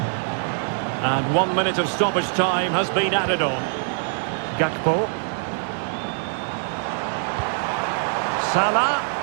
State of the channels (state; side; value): silent; left; digital silence